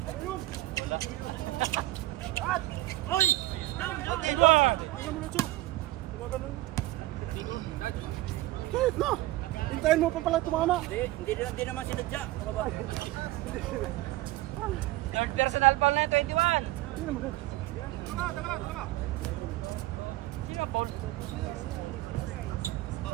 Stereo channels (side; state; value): left; quieter; 17.1 dB